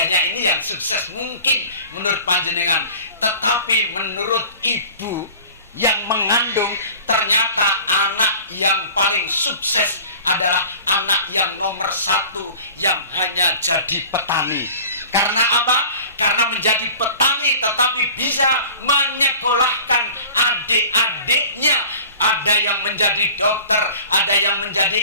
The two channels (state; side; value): inverted; both; correlation -0.43